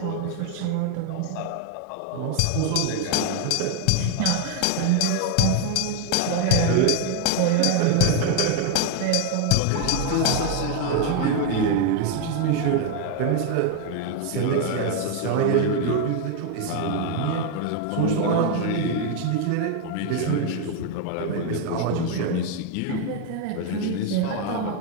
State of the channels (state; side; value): different; both; correlation 0.00